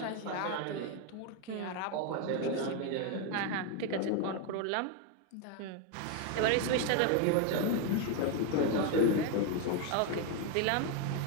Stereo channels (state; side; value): different; both; correlation 0.02